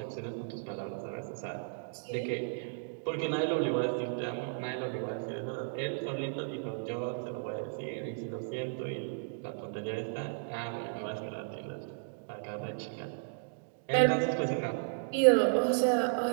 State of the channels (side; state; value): left; silent; digital silence